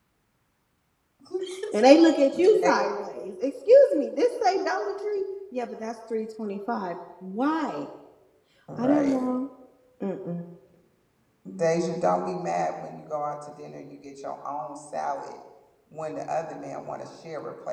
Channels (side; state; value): both; identical; correlation 1.00